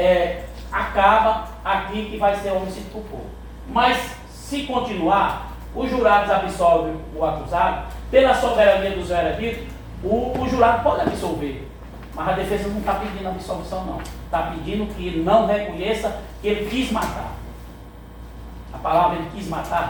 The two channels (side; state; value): both; identical; correlation 1.00